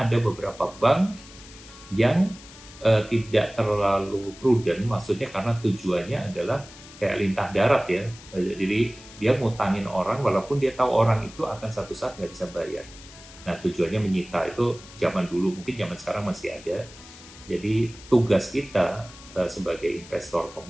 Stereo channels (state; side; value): noise; left; hiss, 19 dB below the sound